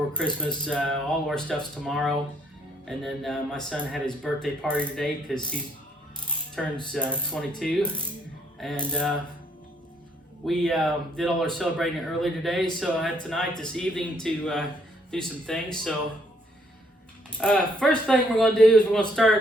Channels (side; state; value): both; normal; correlation 0.69